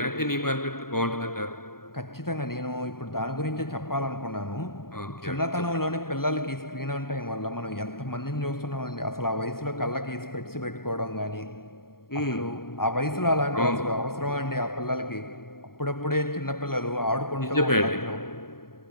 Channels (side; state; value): right; late; 0.93 ms